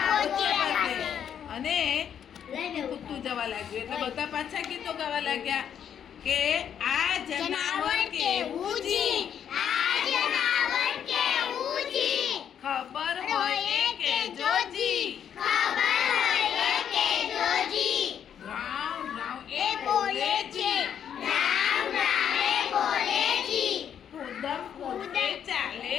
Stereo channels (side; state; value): right; quieter; 8.8 dB